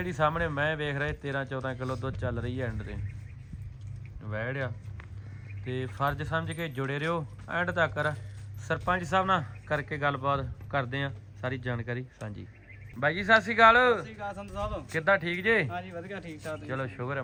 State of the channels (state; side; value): identical; both; correlation 1.00